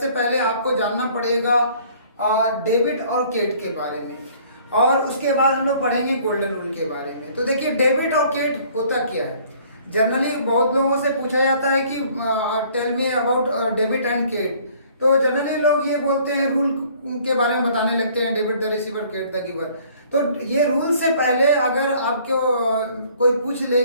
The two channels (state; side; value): inverted; both; correlation -0.57